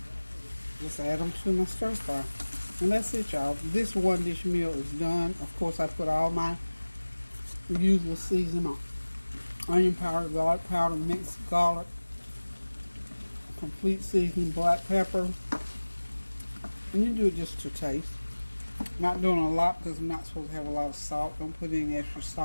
Just add them to my stir fry. And that's it, y'all. This one dish meal is done. Of course, I put all my usual seasoning on. Onion powder, garlic powder, mixed garlic, complete seasoning, black pepper. And you do it just to taste. Not doing a lot because I'm not supposed to have a lot of salt. Don't put any extra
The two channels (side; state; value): both; inverted; correlation -1.00